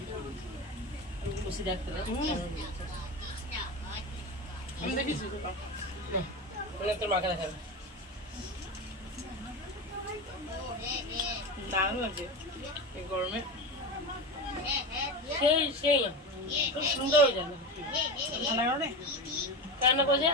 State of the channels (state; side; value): normal; both; correlation 0.23